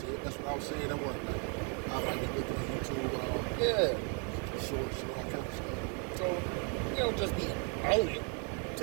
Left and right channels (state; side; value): quieter; left; 38.4 dB